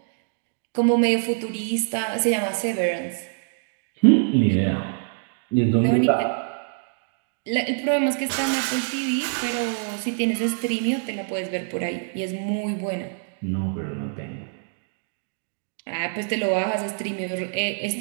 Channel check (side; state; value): left; silent; 62 dB below the other